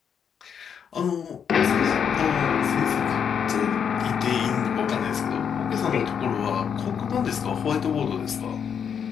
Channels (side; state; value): right; quieter; 7.5 dB